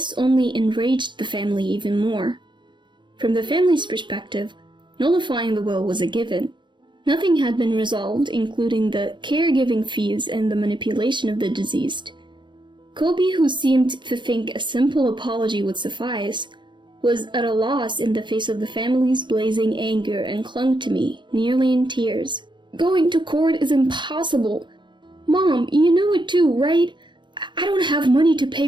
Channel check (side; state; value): left; late; 0.23 ms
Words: only enraged the family even more. From the family's perspective, nullifying the will was a given. Nothing had been resolved, including the caregiving fees and the manipulation of the deceased. Kobe, who seemed to think a simple apology would suffice, was at a loss in the face of the family's blazing anger and clung to me, nearly in tears. "Going to court is impossible. Mom, you know it too, right? I don't have money to pay